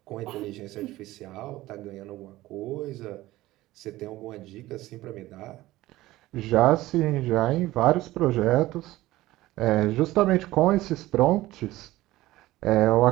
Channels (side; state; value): left; quieter; 17.1 dB